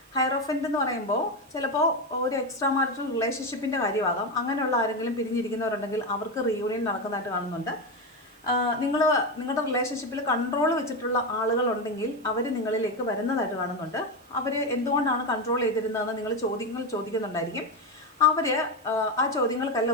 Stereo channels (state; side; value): noise; right; hiss, 30 dB below the sound